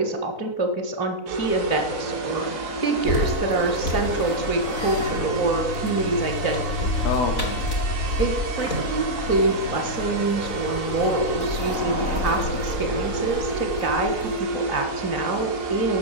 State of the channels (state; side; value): late; right; 4.0 ms